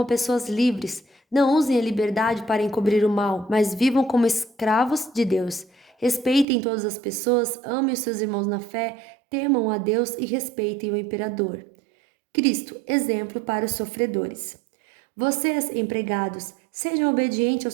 pessoas livres. Não usem a liberdade para encobrir o mal, mas vivam como escravos de Deus. Respeitem todas as pessoas, amem os seus irmãos na fé, temam a Deus e respeitem o imperador. Cristo, exemplo para os sofredores. Vocês, empregados, sejam obedientes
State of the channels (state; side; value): drops out; left; at 6.5 s